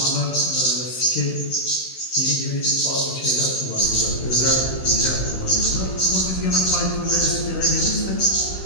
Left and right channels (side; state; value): right; late; 16 ms